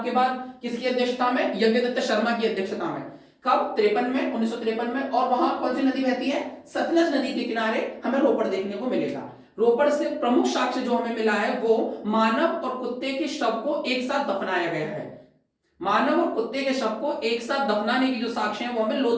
के बाद किसकी अध्यक्षता में? यज्ञदत्त शर्मा की अध्यक्षता में। कब? 53 में, 1953 में। और वहां कौन सी नदी बहती है? सतलज नदी के किनारे हमें रोपड़ देखने को मिलेगा। रोपड़ से प्रमुख साक्ष्य जो हमें मिला है वो मानव और कुत्ते के शव को एक साथ दफनाया गया है। मानव और कुत्ते के शव को एक साथ दफनाने की जो साक्ष्य है वो हमें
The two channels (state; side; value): identical; both; correlation 1.00